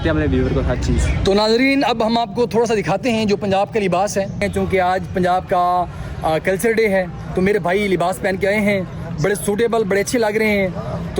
हैं अपने व्यूअर को हर चीज़। तो नाज़रीन अब हम आपको थोड़ा सा दिखाते हैं जो पंजाब का लिबास है, क्योंकि आज पंजाब का कल्चर डे है, तो मेरे भाई लिबास पहन के आए हैं, बड़े सूटेबल, बड़े अच्छे लग रहे हैं।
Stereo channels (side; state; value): both; identical; correlation 1.00